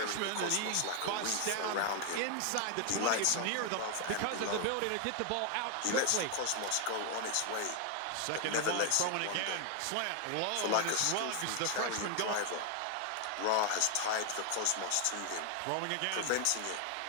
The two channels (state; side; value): different; both; correlation 0.00